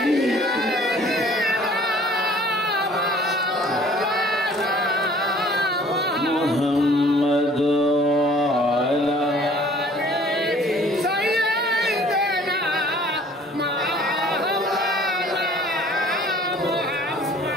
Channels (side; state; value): both; normal; correlation 0.53